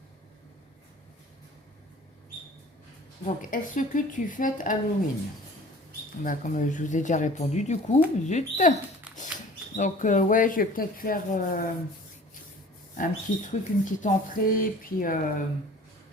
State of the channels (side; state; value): both; normal; correlation 0.46